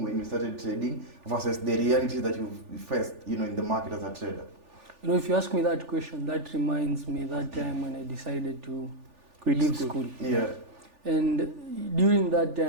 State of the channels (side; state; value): left; late; 3.4 ms